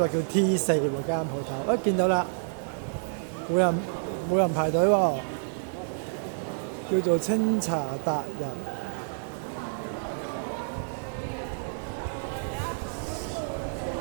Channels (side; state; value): left; silent; digital silence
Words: 叫 T4喎間鋪頭，見到啦，冇人排隊喎，叫做清茶達人。